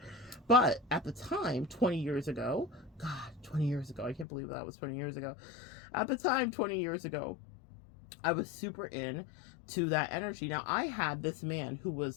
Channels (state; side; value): drops out; right; at 4.2 s